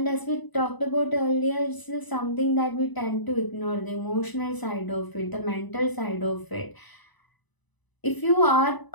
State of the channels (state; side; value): late; right; 1.0 ms